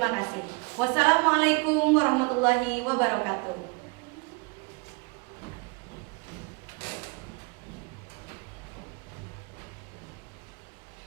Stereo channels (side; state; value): left; quieter; 30.2 dB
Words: kasih. Wassalamualaikum warahmatullahi wabarakatuh.